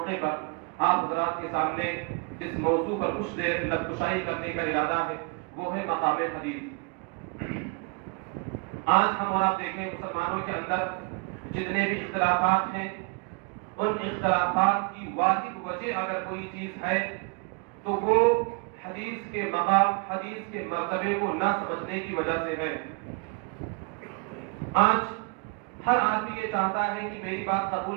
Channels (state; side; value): quieter; left; 32.8 dB